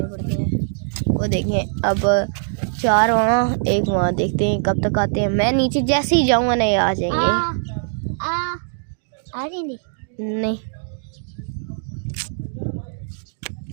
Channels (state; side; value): silent; left; digital silence